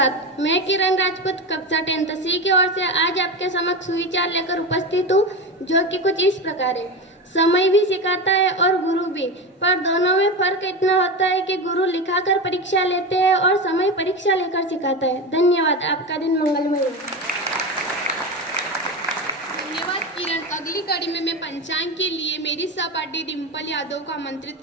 मैं किरण राजपूत कक्षा 10th सी की ओर से आज आपके समक्ष सुविचार लेकर उपस्थित हूँ, जो कि कुछ इस प्रकार है। समय भी सिखाता है और गुरु भी, पर दोनों में फर्क इतना होता है कि गुरु लिखाकर परीक्षा लेते हैं और समय परीक्षा लेकर सिखाता है। धन्यवाद। आपका दिन मंगलमय हो। धन्यवाद किरण। अगली कड़ी में मैं पंचांग के लिए मेरी सहपाठी डिम्पल यादव को आमंत्रित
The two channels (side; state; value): both; normal; correlation 0.21